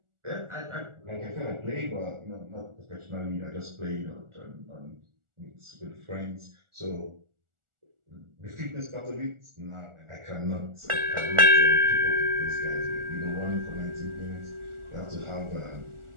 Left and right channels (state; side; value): late; left; 1.4 ms